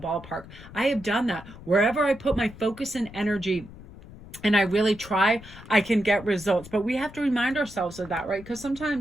I have done that. Wherever I put my focus and energy and I really try, I can get results. But we have to remind ourselves of that, right? Because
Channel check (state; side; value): noise; left; rumble, 17 dB below the sound